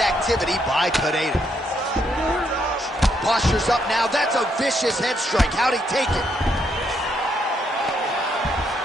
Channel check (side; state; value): both; normal; correlation 0.75